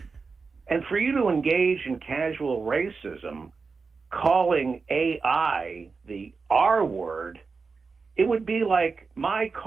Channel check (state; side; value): quieter; left; 4.7 dB